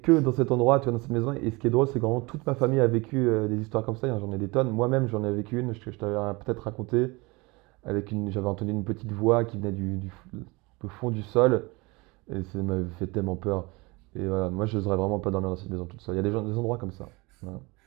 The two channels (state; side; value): quieter; left; 25.1 dB